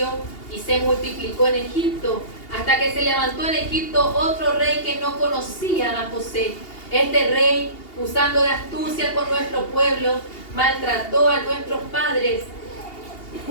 y se multiplicó en Egipto, hasta que se levantó en Egipto otro rey que no conocía a José. Este rey, usando de astucia con nuestro pueblo, maltrató a nuestros padres,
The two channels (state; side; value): late; right; 2.8 ms